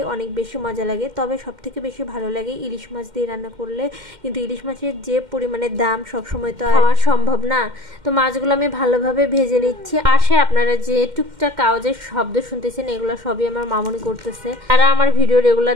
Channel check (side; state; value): left; late; 2.1 ms